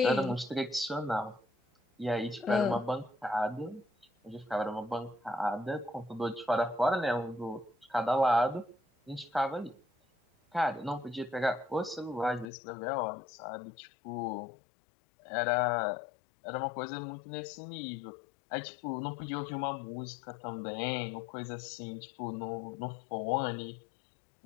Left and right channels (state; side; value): drops out; right; at 12.5 s